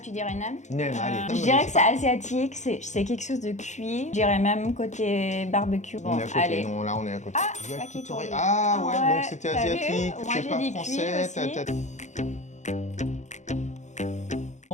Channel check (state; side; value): late; right; 0.34 ms